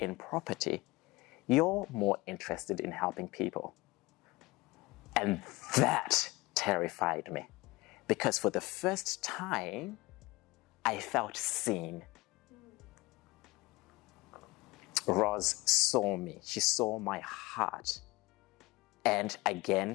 property. You're more interested in helping people. And that terrified me, because for the first time, I felt seen. Roz saw me. She saw my heart. And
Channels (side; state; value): right; quieter; 21.8 dB